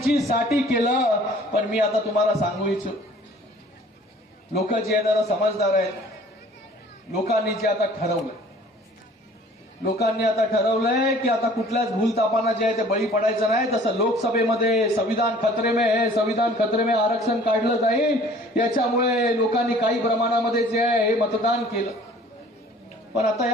केलं. पण मी आता तुम्हाला सांगू इच्छितो, लोक जे आहे जरा समजदार आहेत. लोकांनी जे आता ठरवलंय की आता कुठल्याच भूलतापांना जे आहे ते बळी पडायचं नाही. तसं लोकसभेमध्ये संविधान खतरे में आरक्षण काढलं जाईल. याच्यामुळे लोकांनी काही प्रमाणामध्ये जे आहे हे मतदान केलं. पण आता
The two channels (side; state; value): both; normal; correlation 0.52